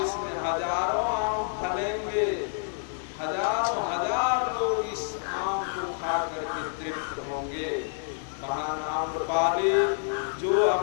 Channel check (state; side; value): silent; right; digital silence